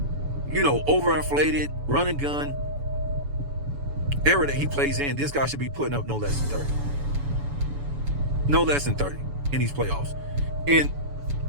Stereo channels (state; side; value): late; left; 7.0 ms